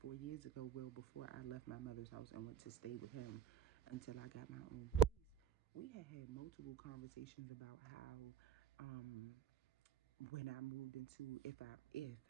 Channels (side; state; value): left; quieter; 9.7 dB